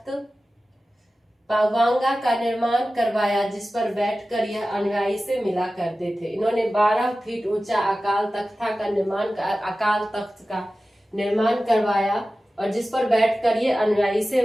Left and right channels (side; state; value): both; normal; correlation 0.95